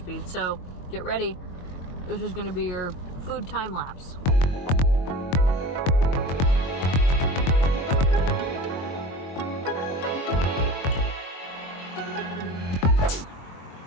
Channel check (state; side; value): late; right; 22 ms